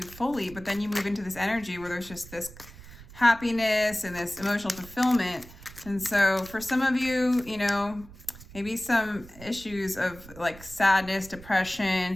fully. But then you move into this energy where there's just this happiness and this emotional fulfillment. And so for some of you, you know, maybe some issues of like sadness,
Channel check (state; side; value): noise; right; rumble, 18 dB below the sound